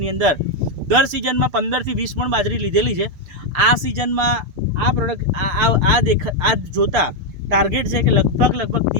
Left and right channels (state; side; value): late; left; 6.8 ms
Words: અંદર દર સિઝનમાં 15 થી 20 મણ બાજરી લીધેલી છે. આ સિઝનમાં આ પ્રોડક્ટ આ જોતા ટાર્ગેટ છે કે લગભગ